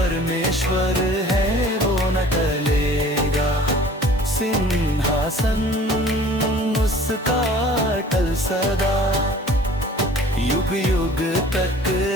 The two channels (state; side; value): normal; both; correlation 0.48